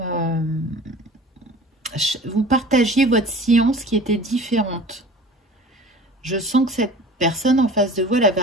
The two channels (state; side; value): normal; both; correlation 0.42